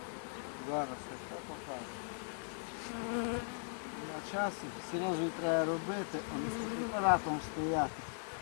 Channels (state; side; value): silent; right; 52 dB below the other